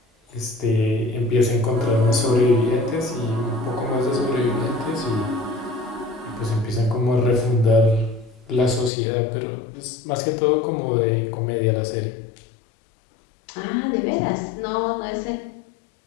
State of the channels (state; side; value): drops out; right; at 8.9 s